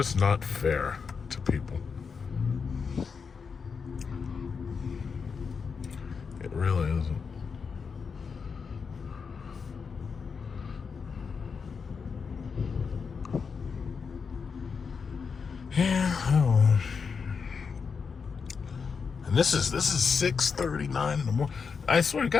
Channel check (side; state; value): right; quieter; 5.6 dB